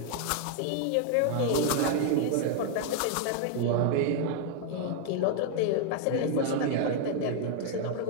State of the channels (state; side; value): different; both; correlation 0.00